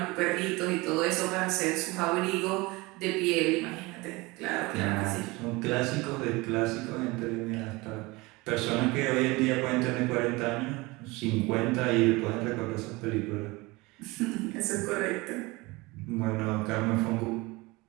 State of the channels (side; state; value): left; quieter; 23.2 dB